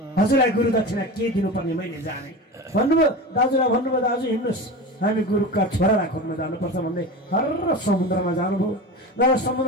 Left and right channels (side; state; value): both; normal; correlation 0.28